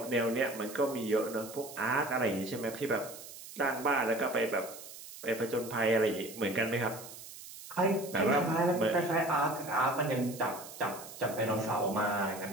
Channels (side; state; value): right; noise; hiss, 14 dB below the sound